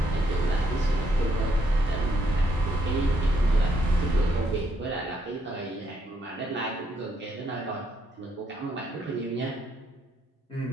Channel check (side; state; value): both; normal; correlation 0.74